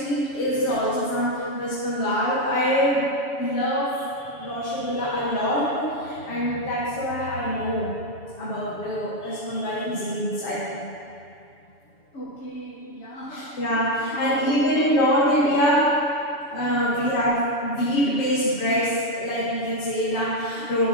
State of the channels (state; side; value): late; right; 7.0 ms